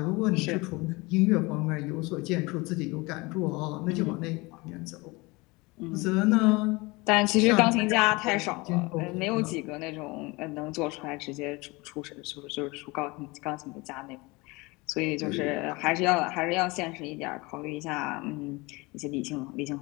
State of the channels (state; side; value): quieter; right; 24.4 dB